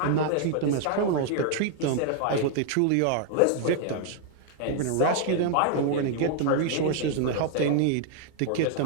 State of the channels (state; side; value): different; both; correlation 0.00